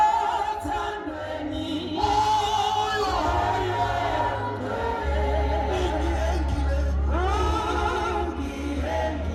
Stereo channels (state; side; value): identical; both; correlation 1.00